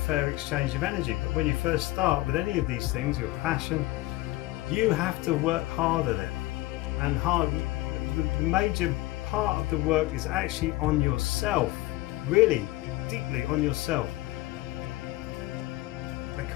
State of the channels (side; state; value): right; quieter; 18.7 dB